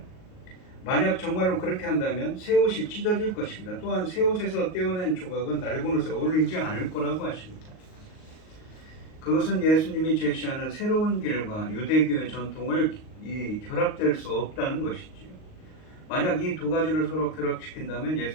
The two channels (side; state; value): right; late; 38 ms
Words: 만약 정말로 그렇게 한다면 새 옷이 찢어질 것입니다. 또한 새 옷에서 떼어낸 조각은 낡은 옷에 어울리지 않을 거라고 하십니다. 그것은 예수님이 제시하는 새로운 길과 유대교의 전통을 결합될 수 없다는 것이지요. 만약 이 두 가지를 서로 결합시킨다면